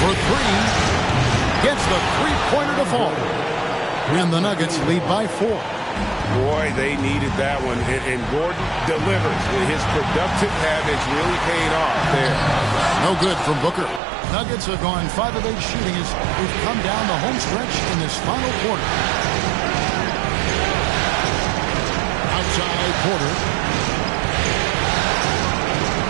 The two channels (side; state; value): left; drops out; at 14.0 s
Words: 3. Gets the three-pointer to fall. And the Nuggets lead by 4. Boy, they needed that one. And Gordon delivers. His productive habits really paid off there. No good from Booker. Nuggets have gone 5 of 8 shooting as we've come down the home stretch in this final quarter. Outside Porter.